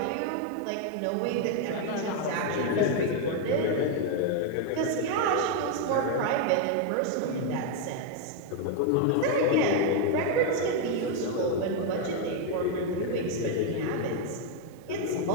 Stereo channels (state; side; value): different; both; correlation 0.01